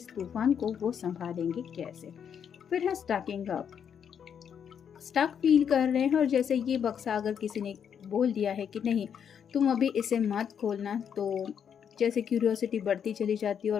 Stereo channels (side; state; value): right; quieter; 7.9 dB